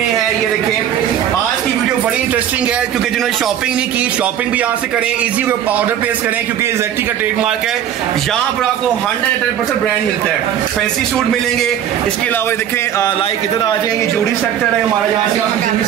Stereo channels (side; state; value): left; quieter; 10.1 dB